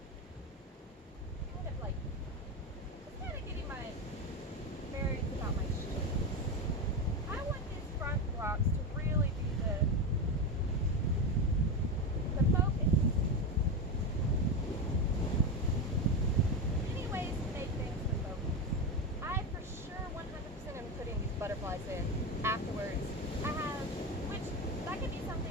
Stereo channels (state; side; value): normal; both; correlation 0.16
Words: Kind of like, it's kind of getting my bearings about my shapes. I want these front blocks to really be the focus. Many ways to make things the focus. I for sure 100% am putting these butterflies in afterwards. I have, which that could be